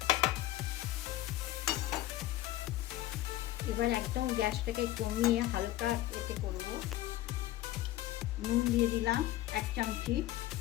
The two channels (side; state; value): right; quieter; 15.4 dB